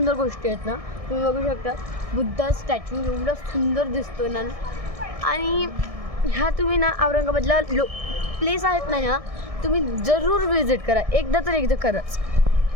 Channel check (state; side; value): late; left; 1.6 ms